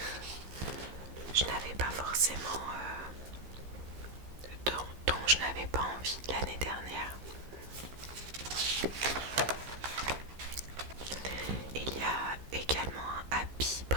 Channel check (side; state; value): left; late; 15 ms